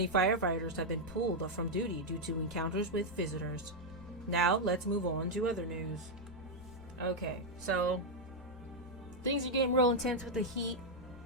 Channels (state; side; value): noise; left; hum, 24 dB below the sound